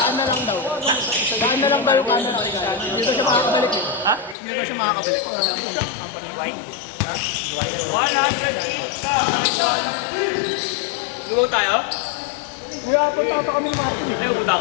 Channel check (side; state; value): right; drops out; at 4.4 s